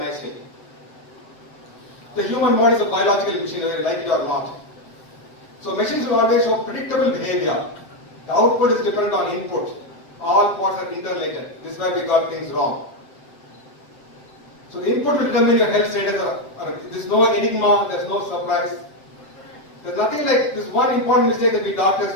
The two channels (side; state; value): right; late; 8.1 ms